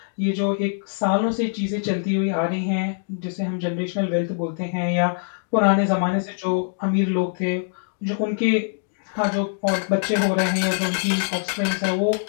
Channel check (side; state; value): right; silent; digital silence